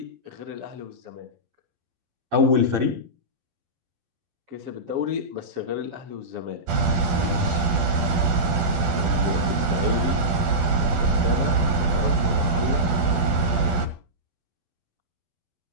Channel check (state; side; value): late; left; 12 ms